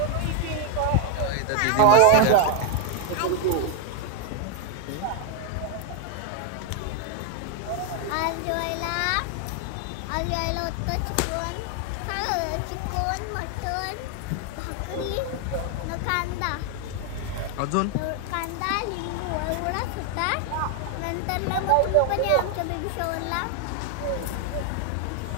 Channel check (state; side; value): different; both; correlation 0.00